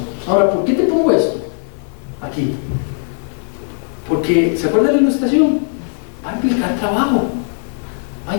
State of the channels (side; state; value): right; silent; 60 dB below the other